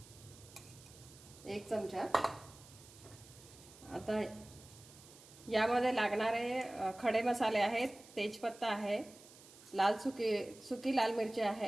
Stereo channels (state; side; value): noise; right; hiss, 21 dB below the sound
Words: 1 चमचा. आता यामध्ये लागणारे खडे मसाले आहेत. तेजपत्ता आहे, सुकी लाल मिरची